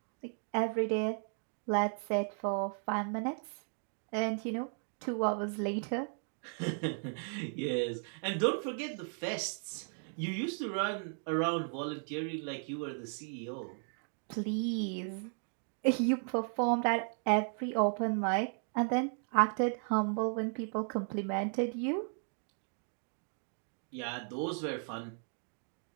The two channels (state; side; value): silent; left; 54 dB below the other